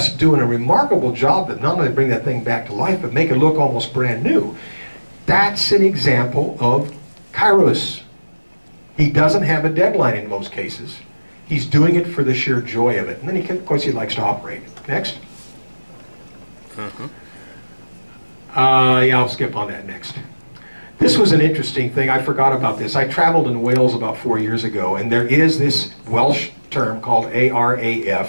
doing a remarkable job that not only bring that thing back to life, but make it look almost brand new. That's an example of Kairos. He doesn't have a deadline in most cases. He's doing it for the sheer joy of it. And then, of course, he likes to operate. Next. Yeah, I'll skip on that next. This was an interesting thing. I forgot about this. I traveled in Wales about 4 years ago, and there is this Welsh term called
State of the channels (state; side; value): inverted; both; correlation -1.00